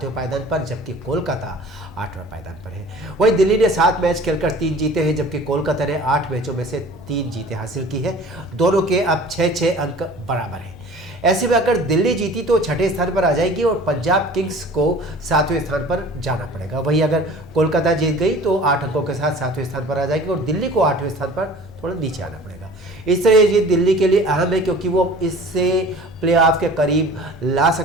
पायदान पर, जबकि कोलकाता 8वें पायदान पर है। वहीं दिल्ली ने 7 मैच खेलकर 3 जीते हैं, जबकि कोलकाता ने 8 मैचों में से 3 जीतें हासिल की है। दोनों के अब 6-6 अंक बराबर हैं। ऐसे में अगर दिल्ली जीती तो 6ठे स्थान पर आ जाएगी और पंजाब किंग्स को 7वें स्थान पर जाना पड़ेगा। वहीं अगर कोलकाता जीत गई तो 8 अंकों के साथ 7वें स्थान पर आ जाएगी और दिल्ली को 8वें स्थान पर थोड़ा नीचे आना पड़ेगा। इस तरह ये जीत दिल्ली के लिए अहम है क्योंकि वो इससे प्लेऑफ के करीब ला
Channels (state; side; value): normal; both; correlation 0.44